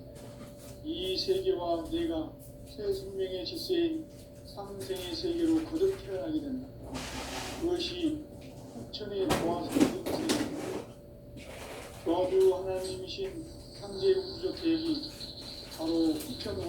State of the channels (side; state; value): both; identical; correlation 1.00